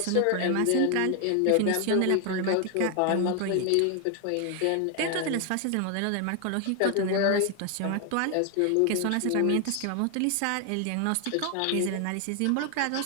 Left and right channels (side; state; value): both; different; correlation 0.00